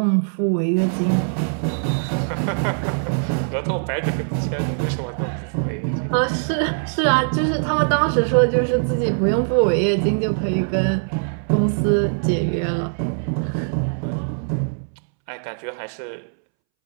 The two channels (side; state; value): left; silent; 65 dB below the other